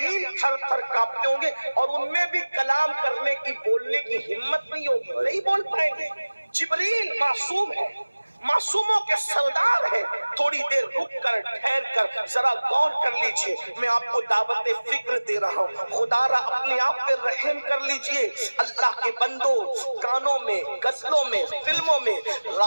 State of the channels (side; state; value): both; inverted; correlation -1.00